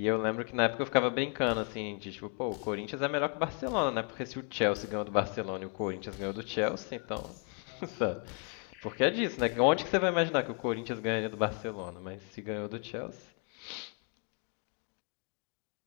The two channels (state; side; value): quieter; right; 39.1 dB